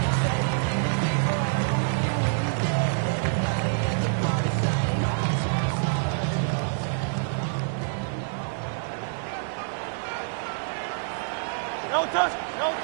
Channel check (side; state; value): left; silent; digital silence